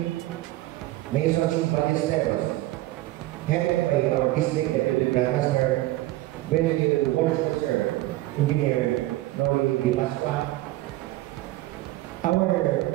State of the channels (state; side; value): quieter; left; 17.3 dB